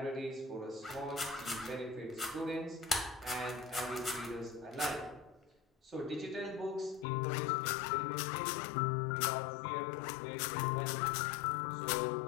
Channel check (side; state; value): right; drops out; at 7.1 s